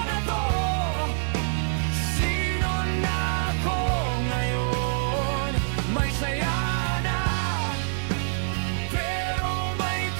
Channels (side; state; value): left; silent; 61 dB below the other